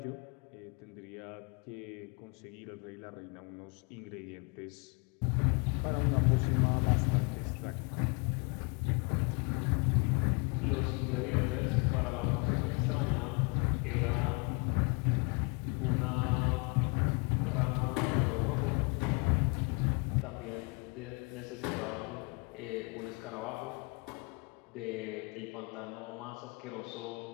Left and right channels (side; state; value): right; quieter; 31.3 dB